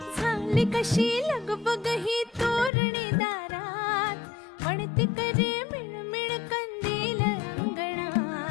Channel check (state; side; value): drops out; right; at 2.7 s